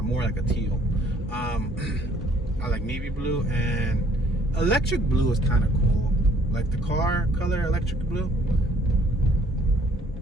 more like a teal. I like navy blue, and electric blue is kind of cool. like the car color, electric blue.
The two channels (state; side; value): normal; both; correlation 0.60